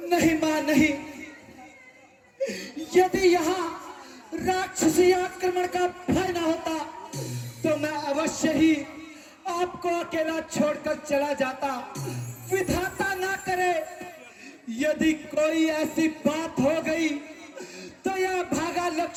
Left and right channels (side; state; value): both; identical; correlation 1.00